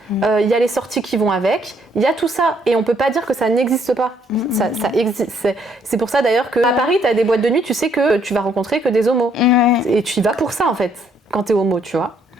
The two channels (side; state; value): both; normal; correlation 0.68